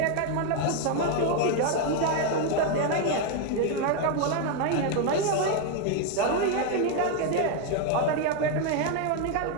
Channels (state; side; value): different; both; correlation 0.01